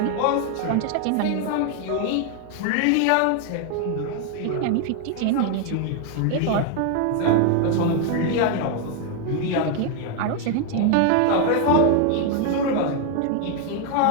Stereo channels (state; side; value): different; both; correlation 0.01